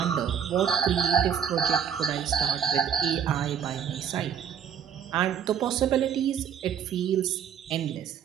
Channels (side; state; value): left; quieter; 8.2 dB